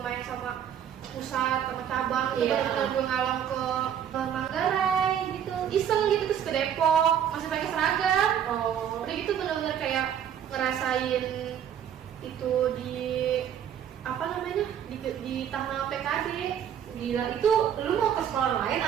main sama pusat, sama cabang. Itu Iya. bener-bener gue ngalong ke Manggarai gitu. Iseng gitu, terus ke Depok. Masih pakai seragam. Oh, Udah gitu bener-bener kayak ngerasain itu di apa namanya, di tanah PKD. gila. Itu lu mau ke sekolah lain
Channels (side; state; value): left; quieter; 9.2 dB